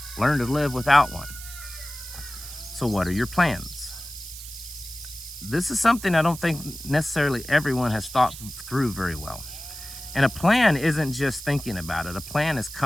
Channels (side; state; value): right; noise; hiss, 12 dB below the sound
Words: learn to live without one. So what are your plans? This is something I don't think necessarily everyone has thought through very well. And a plan isn't just thinking about it. A plan is